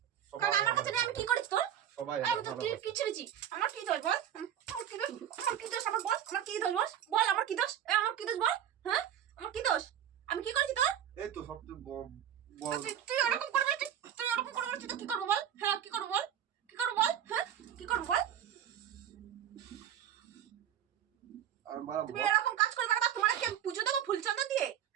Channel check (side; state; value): left; quieter; 10.2 dB